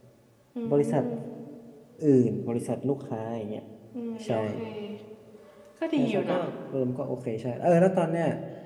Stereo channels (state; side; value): identical; both; correlation 1.00